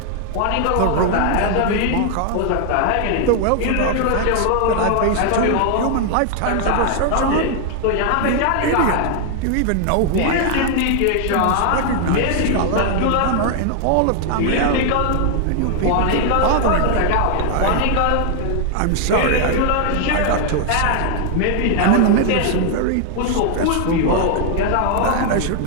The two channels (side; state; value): both; different; correlation 0.00